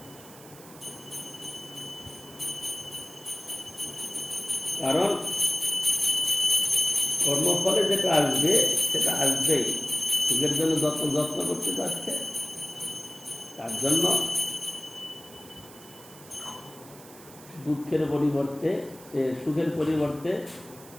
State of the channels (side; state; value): right; noise; hiss, 20 dB below the sound